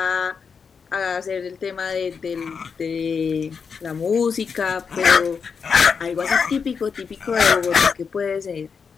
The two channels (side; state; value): right; quieter; 5.9 dB